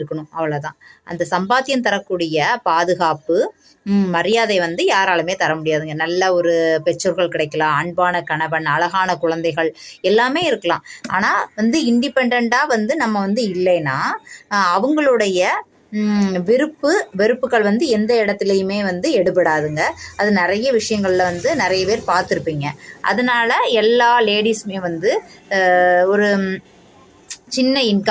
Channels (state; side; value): identical; both; correlation 1.00